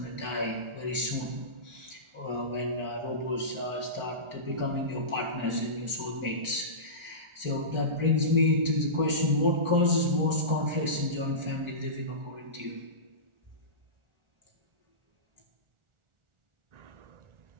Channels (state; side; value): late; left; 1.4 ms